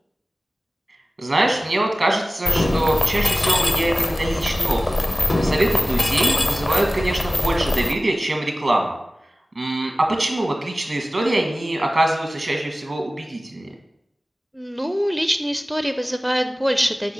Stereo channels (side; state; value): both; normal; correlation 0.97